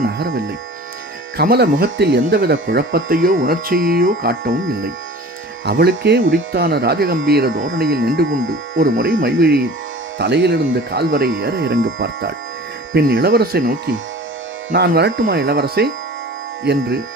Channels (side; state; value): both; normal; correlation 0.42